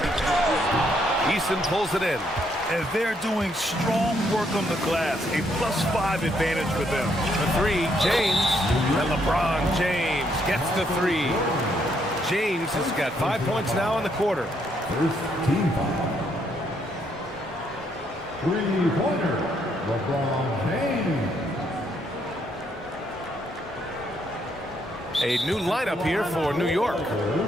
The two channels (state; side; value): normal; both; correlation 0.73